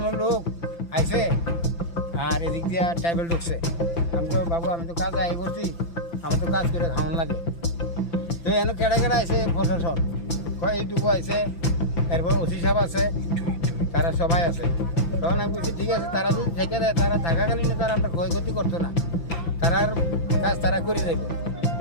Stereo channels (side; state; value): right; late; 5.9 ms